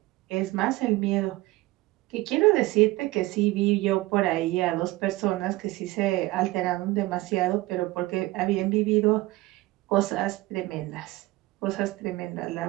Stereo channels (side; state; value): left; quieter; 19.4 dB